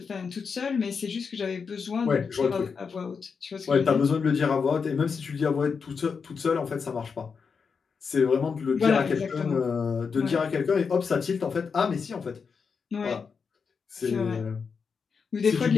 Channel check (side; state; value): right; quieter; 5.7 dB